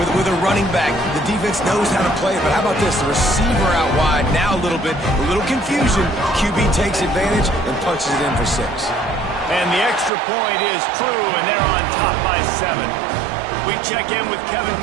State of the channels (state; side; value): drops out; left; at 10.1 s